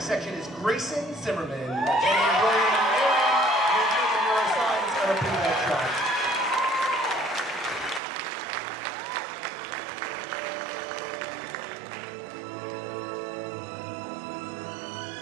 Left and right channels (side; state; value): left; drops out; at 8.0 s